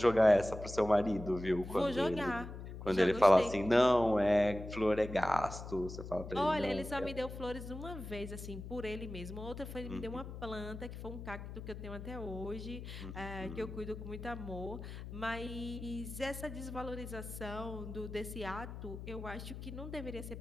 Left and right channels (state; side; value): noise; left; hum, 10 dB below the sound